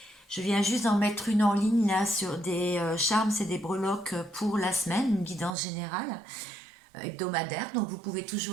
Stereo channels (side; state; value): left; drops out; at 5.5 s